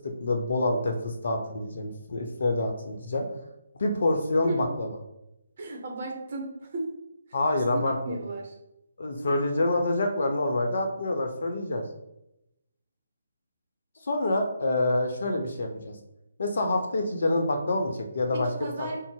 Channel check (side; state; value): both; inverted; correlation -0.81